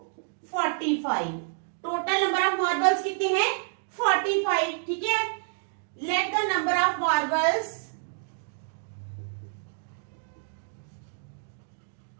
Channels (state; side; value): silent; left; digital silence